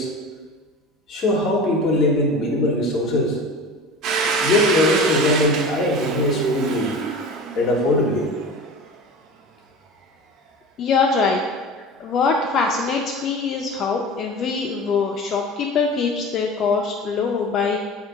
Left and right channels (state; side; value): normal; both; correlation 0.34